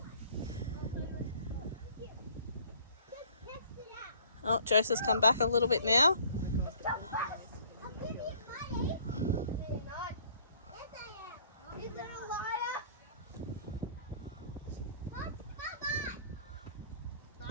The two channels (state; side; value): inverted; both; correlation -0.56